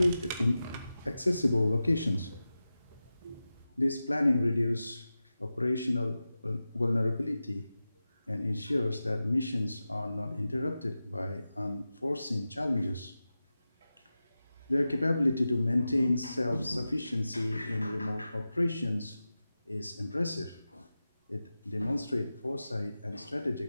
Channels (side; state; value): both; inverted; correlation -0.94